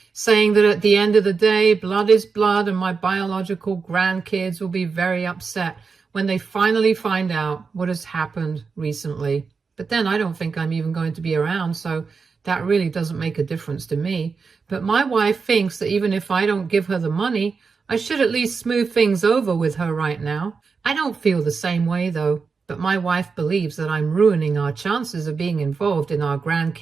saying that at the end of the day, blood is blood, and my biological grandkids will be very upset when they finally find out what has happened recently. But then I don't think I'm even going to be around, so that really doesn't make a difference to me. But my wife thinks that even if I don't give her the money, I should at least smooth things over with her right now. I don't feel the same way, though. But my wife believes that I'm ruining our chances of being involved in our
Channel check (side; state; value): left; quieter; 5.1 dB